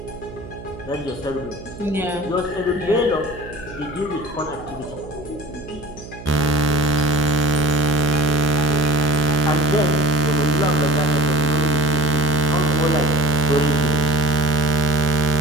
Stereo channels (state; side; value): noise; right; hum, 15 dB below the sound